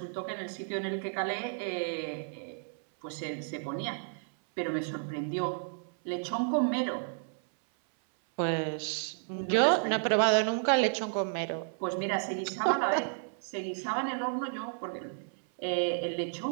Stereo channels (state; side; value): silent; left; 56 dB below the other